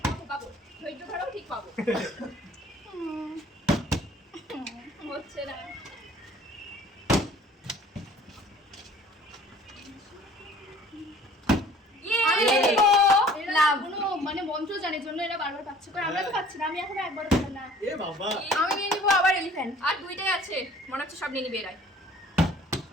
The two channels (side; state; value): both; normal; correlation 0.51